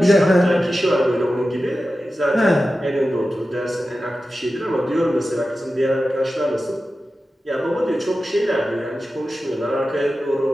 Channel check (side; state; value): both; normal; correlation 0.93